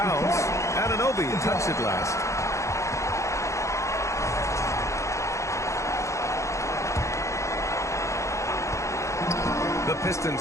Anunoby touched it last. The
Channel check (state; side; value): late; right; 0.14 ms